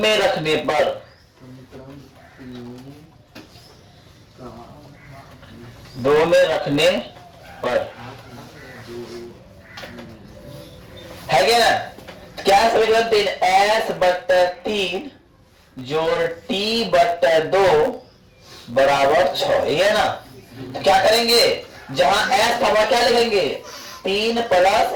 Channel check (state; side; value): identical; both; correlation 1.00